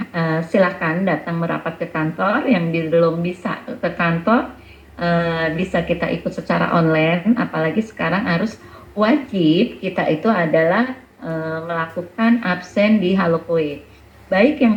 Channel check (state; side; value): identical; both; correlation 1.00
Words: silakan datang merapat ke kantor. Yang belum bisa ke kantor, bisa kita ikut secara online. Apalagi sekarang harus wajib kita itu adalah melakukan absen di Halokoe. Baik